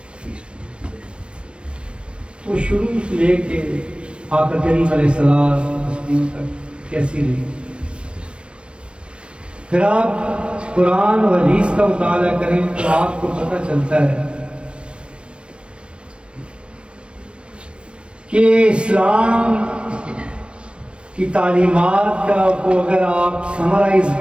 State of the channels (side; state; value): left; late; 0.058 ms